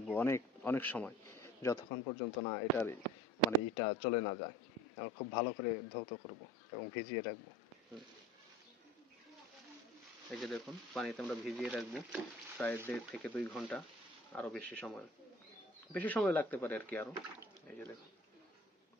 অনেক অনেক সময়, যতক্ষণ পর্যন্ত না এটার মানে ইটা চলে না যায়। আমরা খুব ভালো করে ধৌত করব এবং ভিজিয়ে রাখবো। এই যে দেখুন, পানিতে আমরা ভিজিয়ে রাখবো প্রায় 1.5 থেকে 2 ঘন্টা, আরো বেশি সময় লাগতে পারে আর কি আরো। এই যে দেখুন,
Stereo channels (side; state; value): both; normal; correlation 0.44